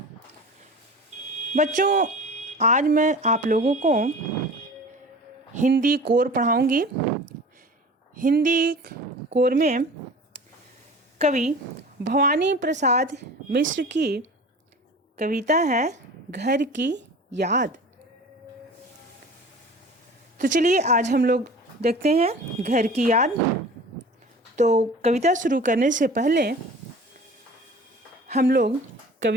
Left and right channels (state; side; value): normal; both; correlation 0.40